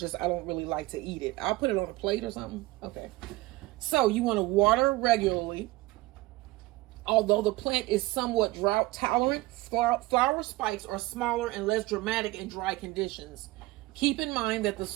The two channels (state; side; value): quieter; left; 20.0 dB